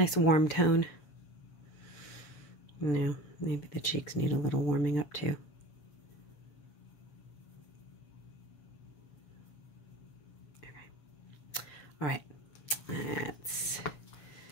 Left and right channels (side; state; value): right; late; 7.3 ms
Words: warm tone. No, maybe the cheeks need a little warming up too. Okay. All right. Let's